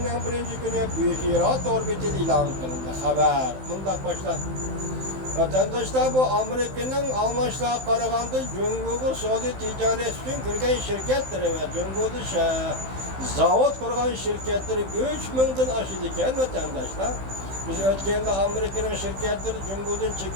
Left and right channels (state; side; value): late; left; 15 ms